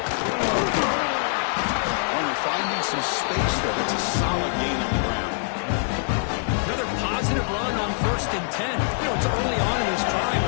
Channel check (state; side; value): silent; right; 58 dB below the other